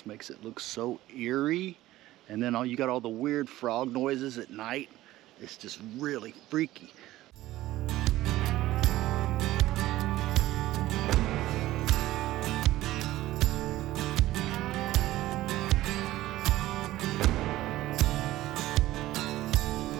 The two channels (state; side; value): quieter; left; 15.9 dB